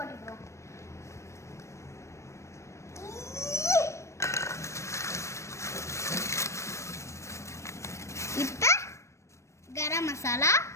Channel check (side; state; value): right; late; 0.14 ms